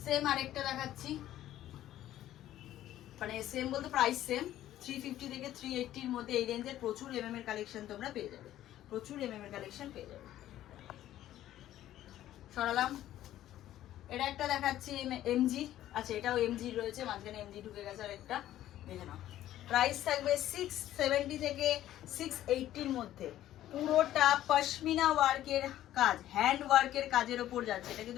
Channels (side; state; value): right; quieter; 13.1 dB